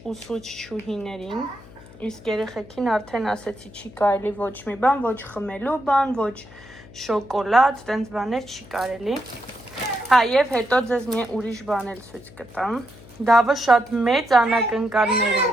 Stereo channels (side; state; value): left; noise; hum, 21 dB below the sound